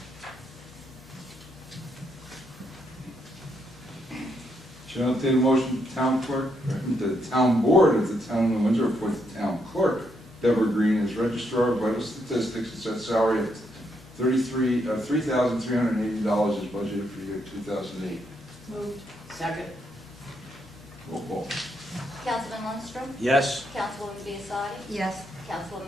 Shall I entertain a motion, town clerk, the town board of the town of Windsor appoint the town clerk, Deborah Green, as registrar of vital statistics and set salary at $3,380 is budgeted for the year 2008. Moved. Second. Roll call. Councilman Lundstrom? Yes. Councilwoman Biassadi? Yes.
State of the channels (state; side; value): normal; both; correlation 0.77